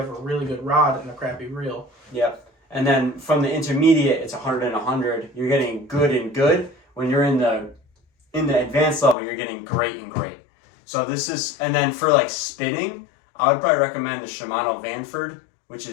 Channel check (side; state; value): right; drops out; at 9.2 s